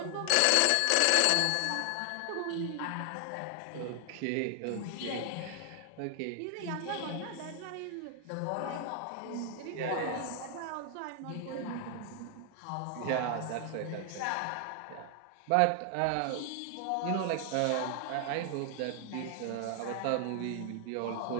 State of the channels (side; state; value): both; different; correlation 0.00